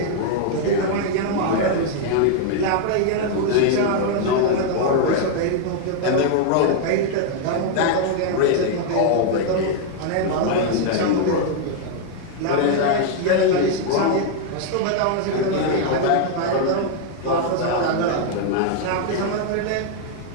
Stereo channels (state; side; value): different; both; correlation 0.00